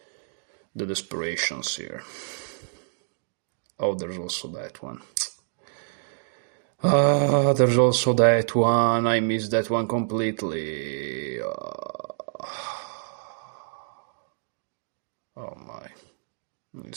desperations here. Oh, there's also that one. There's also that one. I missed that one completely. Oh my.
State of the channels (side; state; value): left; silent; digital silence